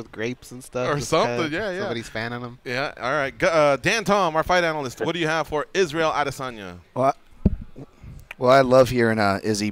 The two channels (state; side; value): identical; both; correlation 1.00